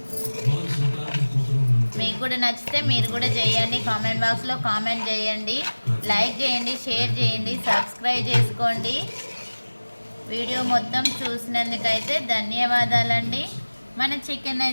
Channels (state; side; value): inverted; both; correlation -1.00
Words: మీకు కూడా నచ్చితే మీరు కూడా చేయండి. కామెంట్ బాక్స్లో కామెంట్ చేయండి, లైక్ చేయండి, షేర్ చేయండి, సబ్స్క్రైబ్ చేసుకోండి. వీడియో మొత్తం చూసినందుకైతే ధన్యవాదాలండి. మన చికెన్